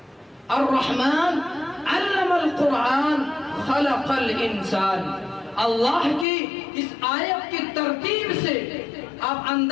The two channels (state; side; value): drops out; right; at 6.2 s